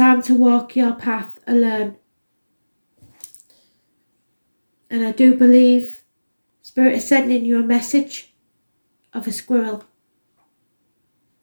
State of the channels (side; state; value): both; inverted; correlation -1.00